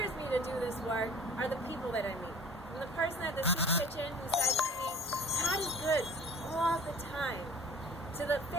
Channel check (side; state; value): both; normal; correlation 0.46